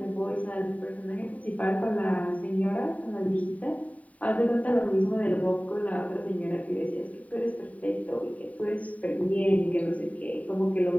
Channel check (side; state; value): right; late; 0.069 ms